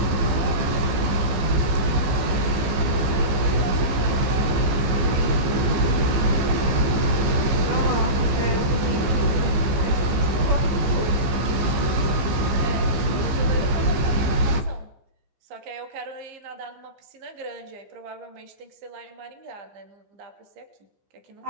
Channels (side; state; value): left; late; 15 ms